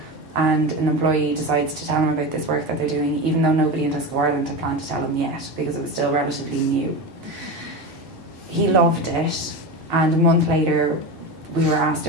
and an employee decides to tell him about this work that they're doing, even though nobody in Tesco Ireland had planned to tell him yet, because it was still relatively new. He loved it, and a month later we were asked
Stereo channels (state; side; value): normal; both; correlation 0.23